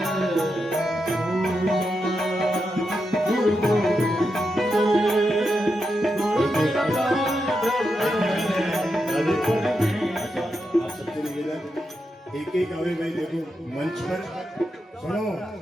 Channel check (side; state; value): both; normal; correlation 0.86